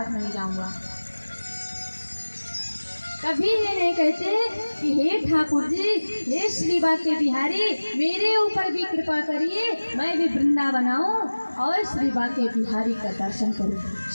नहीं जाऊंगा। कभी ये नहीं कहते कि हे ठाकुर जी, हे श्री बाके बिहारी, मेरे ऊपर भी कृपा करिए, मैं भी वृंदावन आऊं और श्री बाके बिहारी का दर्शन करूं,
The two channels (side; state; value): both; inverted; correlation -1.00